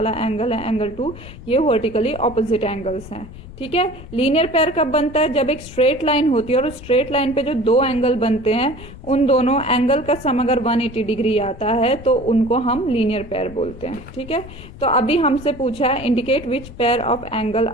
एंगल है एंगल 2, ये वर्टिकली ऑपोजिट एंगल्स हैं। ठीक है। लीनियर पेयर कब बनता है? जब एक स्ट्रेट लाइन होती है और उस स्ट्रेट लाइन पे जो दो एंगल बनते हैं, उन दोनों एंगल का सम अगर 180 डिग्री आता है तो उनको हम लीनियर पेयर बोलते हैं। ठीक है। तो अभी हमसे पूछा है indicate which pair of angle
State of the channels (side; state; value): left; noise; rumble, 16 dB below the sound